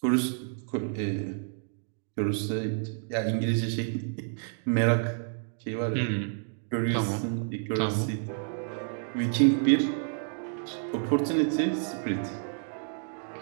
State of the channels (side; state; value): left; silent; digital silence